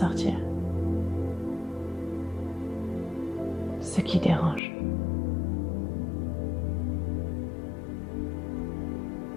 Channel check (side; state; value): right; drops out; at 4.6 s